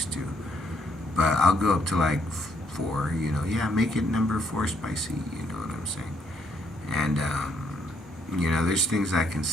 to. But I'll go up to like 4, yeah, make it number 4 spicy, you know what I'm saying? And, there's things I can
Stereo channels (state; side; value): normal; both; correlation 0.71